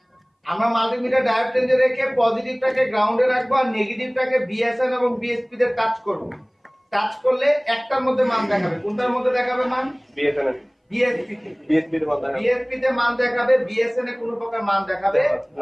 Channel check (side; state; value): both; identical; correlation 1.00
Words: আমরা মাল্টিমিটার ডায়োড রেঞ্জে রেখে পজিটিভটাকে গ্রাউন্ডে রাখবো আর নেগেটিভটাকে বিএসএন এবং বিএসপি তে টাচ করব। টাচ করলে একটার মধ্যে মান দেখাবে। কোনটার মধ্যে দেখাবে মান? বিএসএন এর। বিএসপি তে। বিএসপি তে মান দেখাবে। বিএসপি তে মান দেখাবে, বিএসএন এ কোনো প্রকার মান দেখাবে